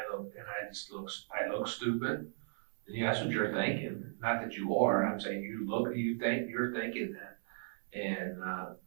look stupid. Yeah, that's what you're thinking. Not that you are. I'm saying you're thinking that, and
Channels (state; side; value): silent; left; 54 dB below the other